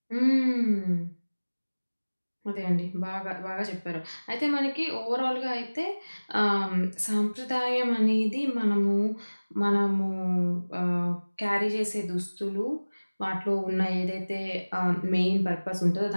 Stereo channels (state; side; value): inverted; both; correlation -1.00